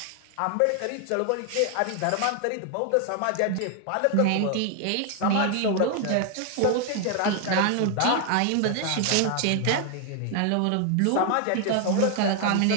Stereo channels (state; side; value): different; both; correlation 0.00